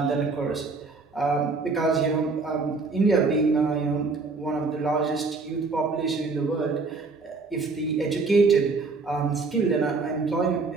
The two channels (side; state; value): left; quieter; 4.0 dB